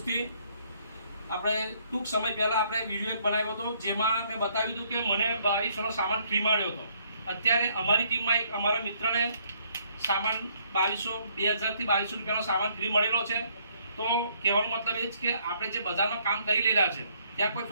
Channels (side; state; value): both; inverted; correlation -0.67